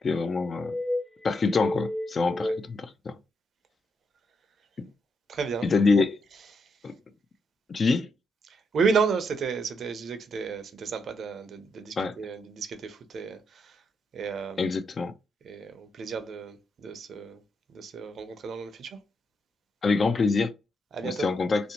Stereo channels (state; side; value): normal; both; correlation 0.81